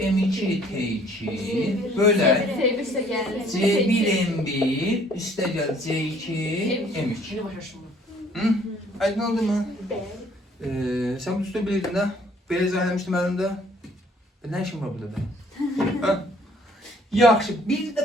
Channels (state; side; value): normal; both; correlation 0.59